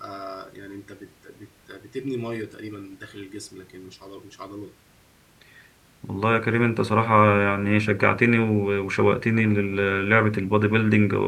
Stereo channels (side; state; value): both; identical; correlation 1.00